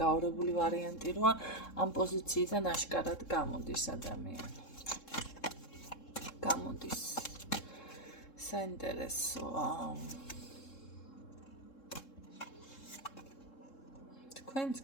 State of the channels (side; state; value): right; late; 3.7 ms